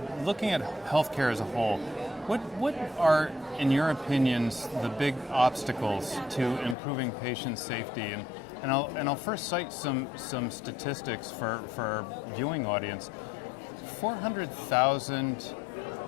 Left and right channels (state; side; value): drops out; right; at 6.8 s